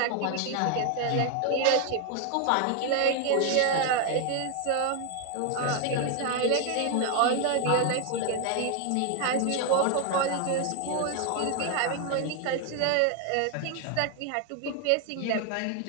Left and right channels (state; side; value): different; both; correlation 0.01